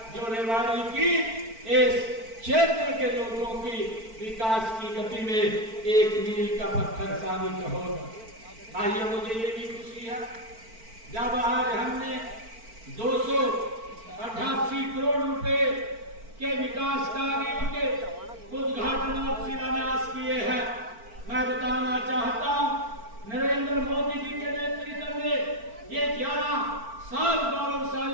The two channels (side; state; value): left; late; 4.5 ms